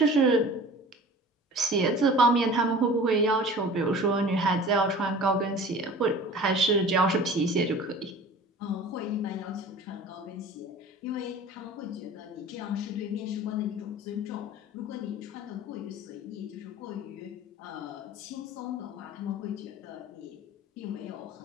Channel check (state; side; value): normal; both; correlation 0.42